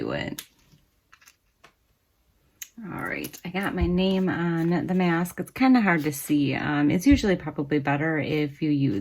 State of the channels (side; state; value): both; identical; correlation 1.00